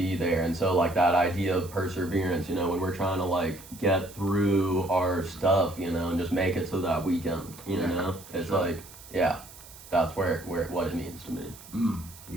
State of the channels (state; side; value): noise; right; hiss, 19 dB below the sound